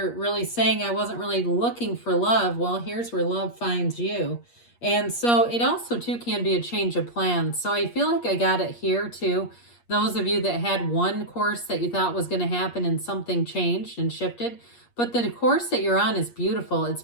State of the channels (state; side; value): late; right; 8.5 ms